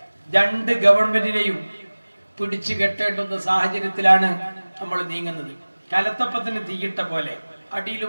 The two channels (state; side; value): inverted; both; correlation -1.00